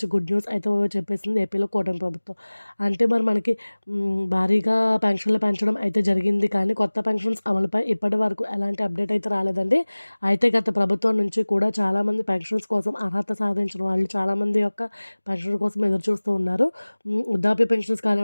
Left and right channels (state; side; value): inverted; both; correlation -1.00